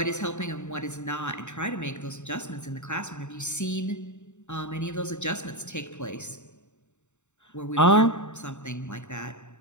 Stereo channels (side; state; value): right; late; 0.84 ms